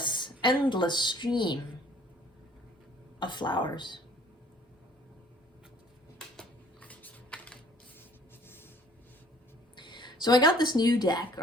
stream of flowers. So I got this new deck,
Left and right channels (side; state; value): both; normal; correlation 0.56